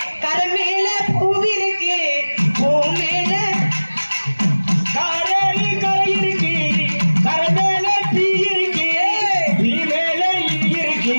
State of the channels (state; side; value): inverted; both; correlation -1.00